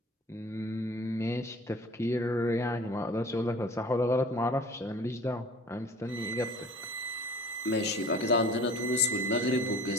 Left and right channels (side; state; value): both; normal; correlation 0.45